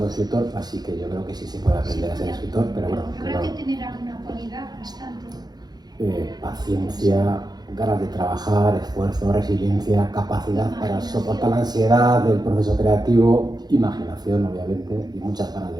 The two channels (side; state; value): left; late; 0.19 ms